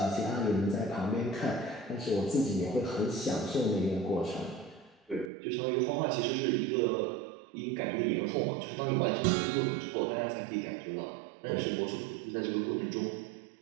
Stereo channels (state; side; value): drops out; left; at 5.3 s